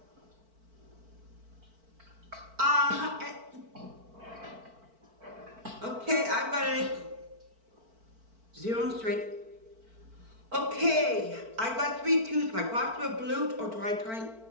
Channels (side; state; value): left; late; 4.5 ms